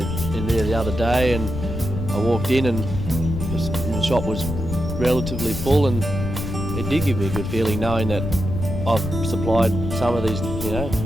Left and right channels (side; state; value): left; noise; rumble, 5 dB below the sound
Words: there the other day and I walked in and the shop was relatively full, and it did give me a good feeling knowing that I've supplied some of these,